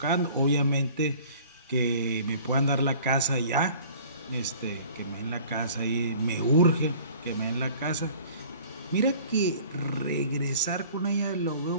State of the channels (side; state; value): both; inverted; correlation -0.48